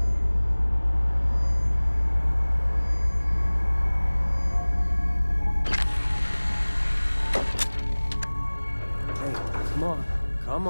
Hey, come on. Come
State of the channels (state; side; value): inverted; both; correlation -1.00